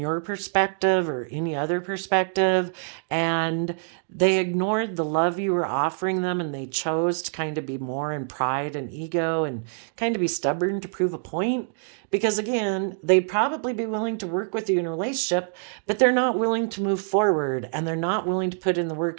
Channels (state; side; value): silent; left; digital silence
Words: perspective or any other perspective. And they ignored the love you were offering them, and they chose to kind of be more in pride and ego and kind of be stubborn to prove a point. Because again, they'd probably be willing to work with you in a relationship, but they're not willing to move forward, and they're not willing to put in the